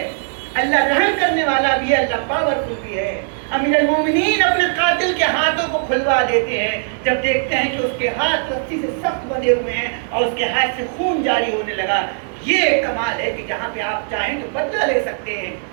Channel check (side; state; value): left; silent; digital silence